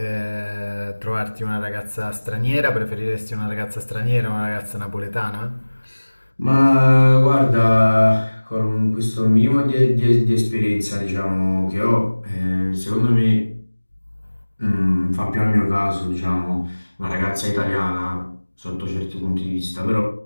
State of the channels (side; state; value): both; inverted; correlation -1.00